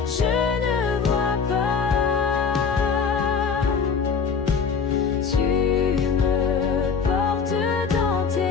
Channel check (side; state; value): right; quieter; 5.7 dB